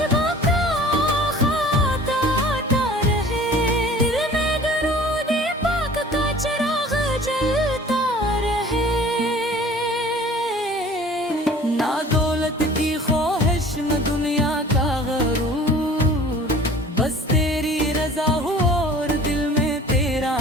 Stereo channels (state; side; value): normal; both; correlation 0.46